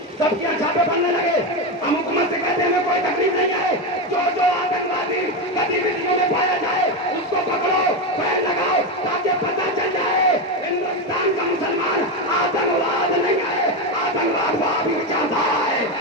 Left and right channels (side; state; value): both; normal; correlation 0.13